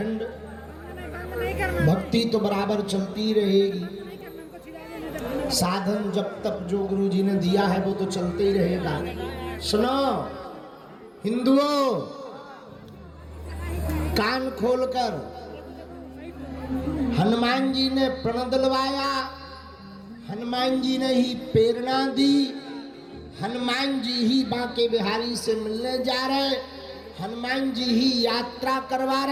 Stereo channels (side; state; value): both; identical; correlation 1.00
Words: भक्ति तो बराबर चलती रहेगी। साधन जब तक जो गुरु जी ने दिया है वो तो चलते ही रहेगा। सुनो हिंदुओं, कान खोलकर, हनुमान जी ने प्रण दिलवाया, हनुमान जी ने ही प्रेरणा दी, हनुमान जी ही बांके बिहारी से मिलने जा रहे, हनुमान जी ही यात्रा करवा